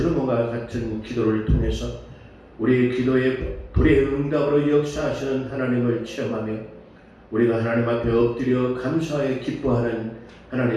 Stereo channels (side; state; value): both; identical; correlation 1.00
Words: 같은 기도를 통해서 우리의 기도에 불의 응답으로 역사하시는 하나님을 체험하며 우리가 하나님 앞에 엎드려 감사하여 기뻐하는